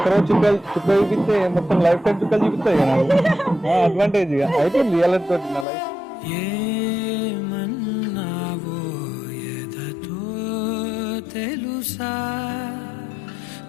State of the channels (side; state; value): right; drops out; at 5.7 s